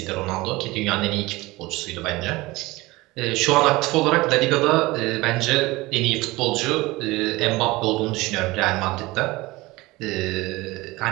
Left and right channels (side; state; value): left; quieter; 20.8 dB